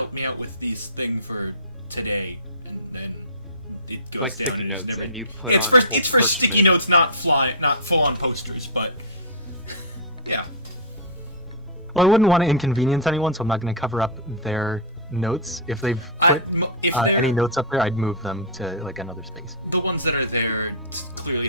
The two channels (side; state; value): both; normal; correlation -0.16